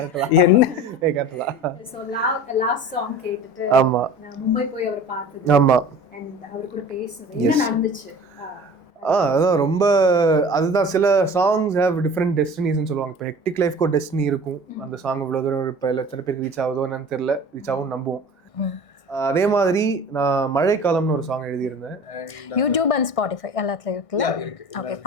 என்ன கரெக்ட்டா. சோ லாஸ்ட் சாங் கேட்டுட்டு ஆமா நான் மும்பை போய் அவர் பார்த்தது. ஆமா, and அவர் கூட பேசுனது என்ன நடந்துச்சு. அதான் ரொம்ப அதுதான் சில சாங்ஸ் ஹேவ் டிஃப்ரெண்ட் டெஸ்டினிஸ்ன்னு சொல்லுவாங்க. இப்போ ஹெக்டிக் லைஃப்க்கு ஒரு டெஸ்டினி இருக்கும். அந்த சாங் இவ்வளோ தூரம் இப்போ எத்தனை பேருக்கு ரீச் ஆகுதோ என்னன்னு தெரியல, ரீச் ஆகும் நம்புவோம். அதே மாதிரி நான் மழைக்காலம்னு ஒரு சாங் எழுதியிருந்தேன். யூடியூப் அண்ட் ஸ்பாட்டிஃபை எல்லாத்துலயும் இருக்குல்ல? ஓகே,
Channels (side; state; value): right; late; 1.6 ms